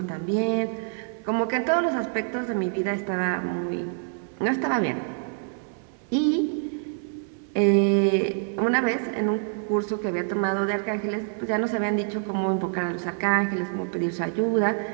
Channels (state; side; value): silent; left; 61 dB below the other